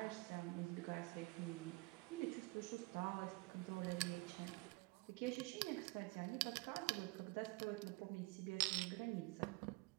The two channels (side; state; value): left; quieter; 25.6 dB